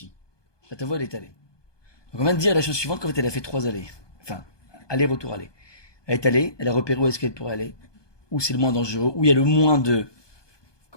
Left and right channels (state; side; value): late; right; 1.2 ms